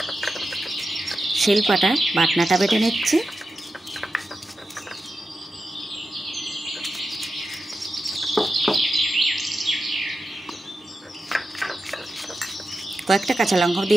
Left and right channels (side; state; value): both; normal; correlation 0.91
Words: শিলপাটা বাটনাটা বেটে নিচ্ছি। কয়েকটা কাঁচা লঙ্কা